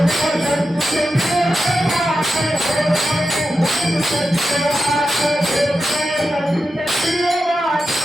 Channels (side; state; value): both; normal; correlation 0.90